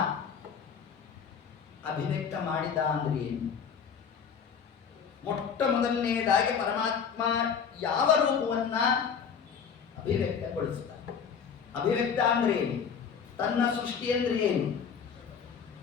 ಅಭಿವ್ಯಕ್ತ ಮಾಡಿದ ಅಂದ್ರೆ ಏನು? ಮೊಟ್ಟ ಮೊದಲನೆಯದಾಗಿ ಪರಮಾತ್ಮ ಯಾವ ರೂಪವನ್ನ ಅಭಿವ್ಯಕ್ತಗೊಳಿಸಿದ? ಅಭಿವ್ಯಕ್ತ ಅಂದ್ರೆ ಏನು? ತನ್ನ ಸೃಷ್ಟಿ ಅಂದ್ರೆ ಏನು?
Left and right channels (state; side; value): quieter; right; 6.8 dB